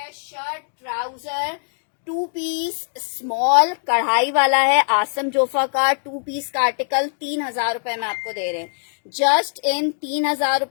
शर्ट ट्राउजर 2 पीस स्मॉल कढ़ाई वाला है, आसम जोफा का 2 पीस का आर्टिकल 3,000 में आपको दे रहे हैं। जस्ट इन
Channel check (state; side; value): silent; right; digital silence